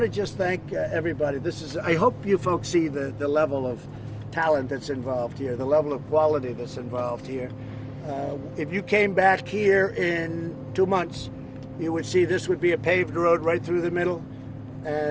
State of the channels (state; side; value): identical; both; correlation 1.00